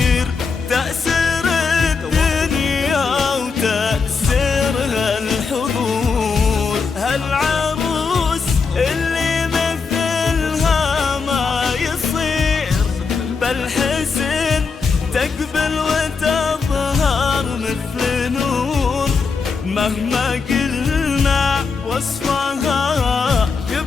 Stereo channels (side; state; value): right; quieter; 5.0 dB